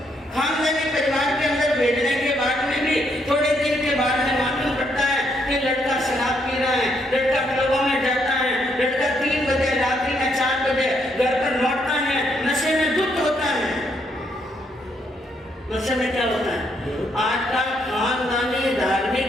खानदानी परिवार के अंदर भेजने के बाद में भी थोड़े दिन के बाद में मालूम पड़ता है कि लड़का शराब पी रहा है, लड़का क्लबों में जाता है, लड़का 3 बजे रात्रि में 4 बजे घर पर लौटता है, नशे में धुत होता है। नशे में क्या होता है? आज का खानदानी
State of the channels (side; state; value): both; normal; correlation 0.74